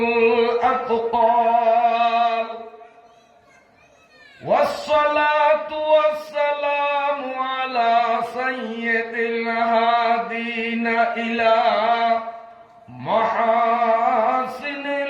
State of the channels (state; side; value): identical; both; correlation 1.00